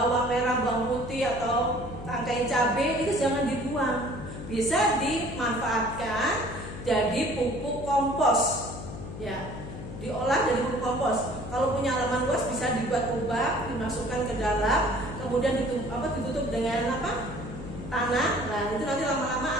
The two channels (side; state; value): left; noise; hum, 10 dB below the sound